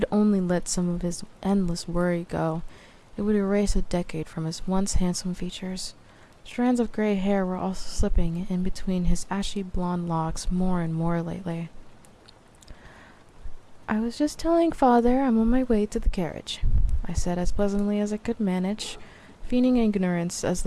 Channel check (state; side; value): identical; both; correlation 1.00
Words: only let some of his endless worry go, it would erase a decade from his once handsome features. Strands of gray hair were also slipping in between his ashy blonde locks more and more lately. "I was just telling father I'm on my way to the carriage," I said as pleasantly as I could manage, feigning ignorance as